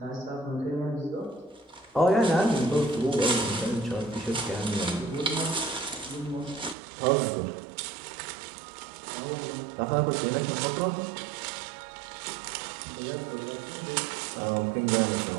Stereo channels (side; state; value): left; drops out; at 6.8 s